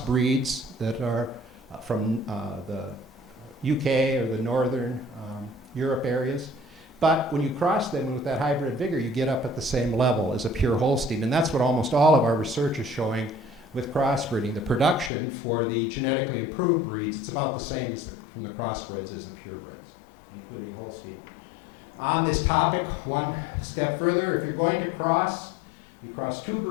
that are from the UK or the Northern Europe areas. But when you cross them with that hybrid vigor, you get up at the same level as a pure Holstein. And that's what almost all of our research is showing with crossbreeding. The production for the genetically improved breeds, it's about the same as from the crossbreds as the purebreds, including Holstein. On this topic, one step further, if you're going to cross, you cross two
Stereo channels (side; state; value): right; drops out; at 15.1 s